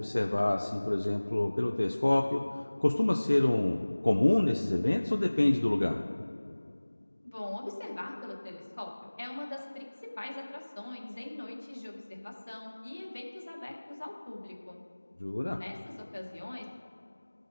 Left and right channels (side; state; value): both; inverted; correlation -1.00